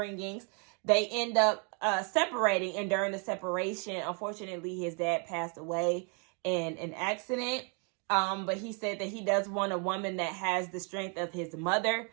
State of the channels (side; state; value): left; quieter; 37.8 dB